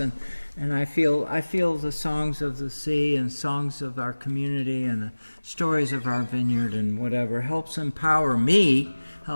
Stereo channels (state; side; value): inverted; both; correlation -1.00